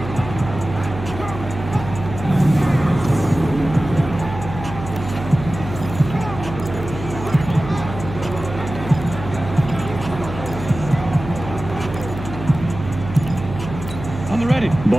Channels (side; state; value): right; noise; hum, 10 dB below the sound